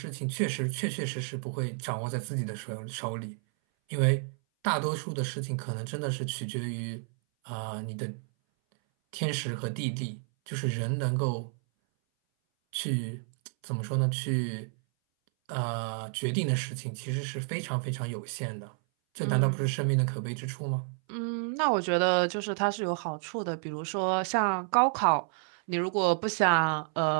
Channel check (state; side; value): silent; left; 57 dB below the other